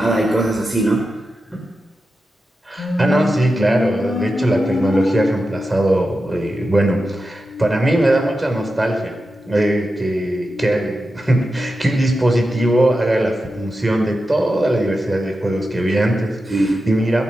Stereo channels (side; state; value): both; normal; correlation 0.90